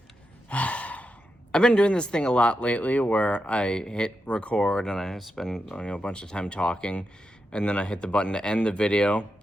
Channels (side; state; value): both; normal; correlation 0.87